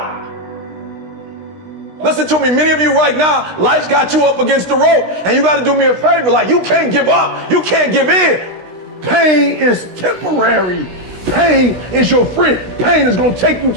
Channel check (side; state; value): left; late; 16 ms